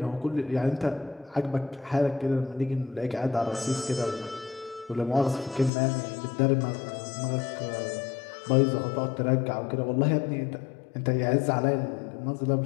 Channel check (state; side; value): drops out; right; at 5.7 s